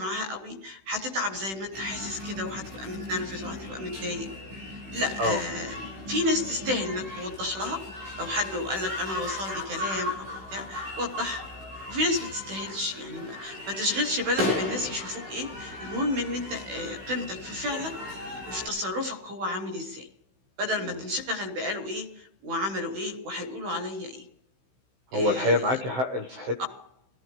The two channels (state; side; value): late; left; 16 ms